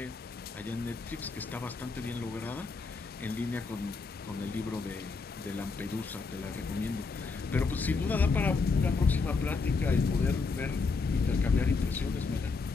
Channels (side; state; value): right; quieter; 4.3 dB